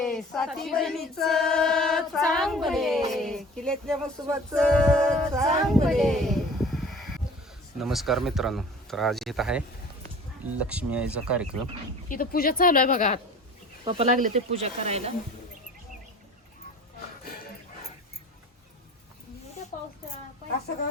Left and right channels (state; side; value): normal; both; correlation 0.43